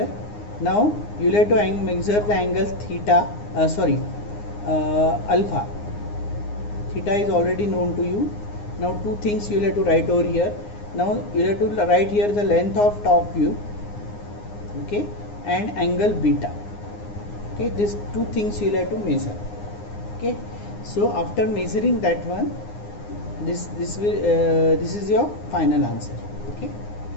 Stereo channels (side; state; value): right; late; 9.7 ms